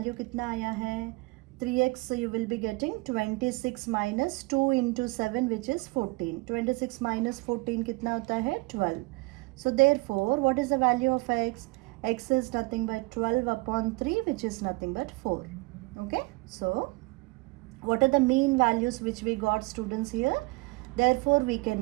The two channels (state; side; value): quieter; left; 25.5 dB